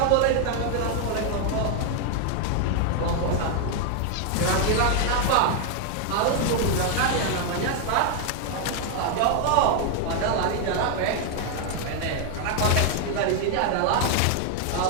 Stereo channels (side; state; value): both; different; correlation 0.00